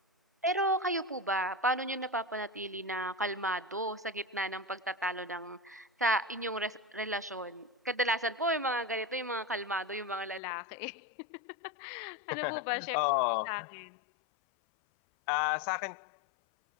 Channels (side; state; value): right; drops out; at 10.4 s